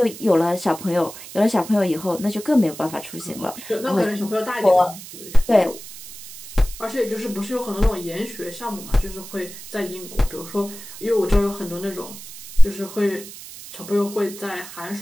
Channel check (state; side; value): noise; right; hiss, 14 dB below the sound